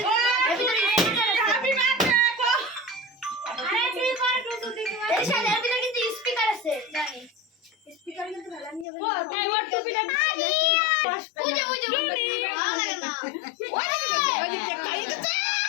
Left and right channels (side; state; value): right; drops out; at 8.8 s